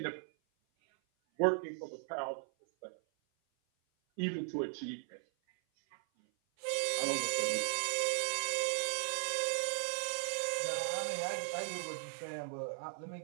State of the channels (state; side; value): silent; left; 53 dB below the other